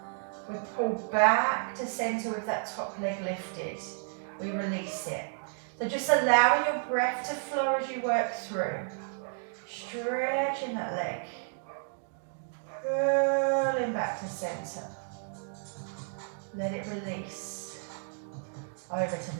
We pull back to center with that top leg lifted. We release it. So just allowing your breath to flow as you work through. Stretching that leg. Pulling back to center. Let it release. Over to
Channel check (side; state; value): left; silent; digital silence